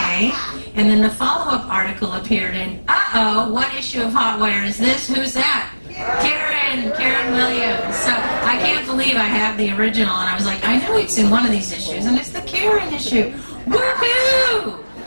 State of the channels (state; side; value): inverted; both; correlation -1.00